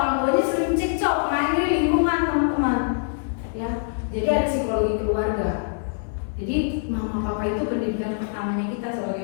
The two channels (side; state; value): right; silent; 63 dB below the other